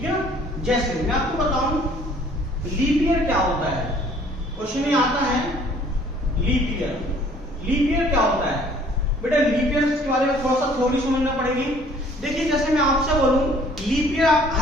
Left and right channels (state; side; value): normal; both; correlation 0.56